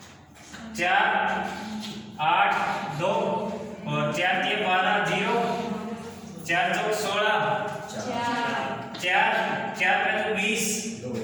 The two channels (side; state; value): both; identical; correlation 1.00